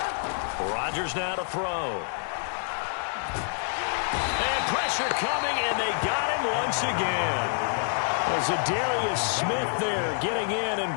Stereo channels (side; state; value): right; silent; digital silence